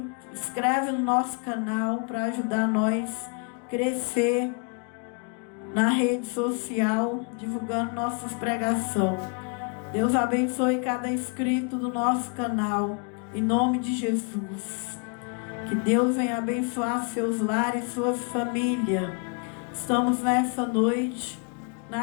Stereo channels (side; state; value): right; quieter; 37.3 dB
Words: inscreve no nosso canal para ajudar nós a crescer na rede social, divulgando nossas pregações. Deus abençoe cada inscrito do nosso canal, em nome de Jesus. Que Deus venha abençoar seus lares, suas famílias. Estamos nessa noite